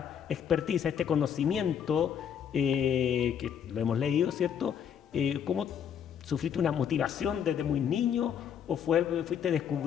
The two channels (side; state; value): right; quieter; 8.4 dB